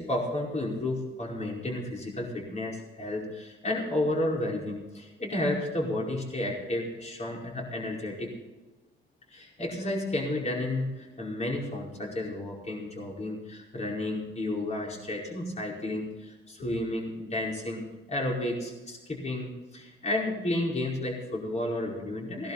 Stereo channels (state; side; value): normal; both; correlation 0.59